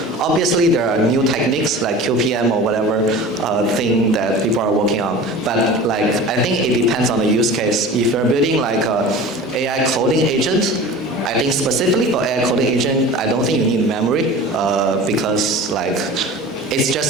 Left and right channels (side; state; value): both; normal; correlation 0.37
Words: Obviously, there are new techniques like QPM or whatever thing that people are working on. But like, I think it depends on the use case. If you're building like a AI coding agent, I think specifically for AI coding agent, I don't think you need memory because like, it's